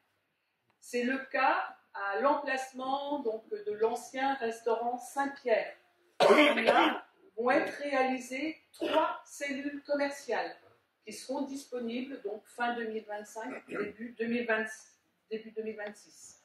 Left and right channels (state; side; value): identical; both; correlation 1.00